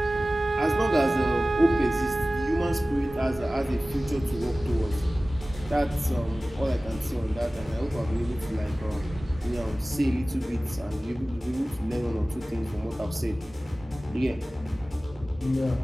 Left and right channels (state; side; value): normal; both; correlation 0.97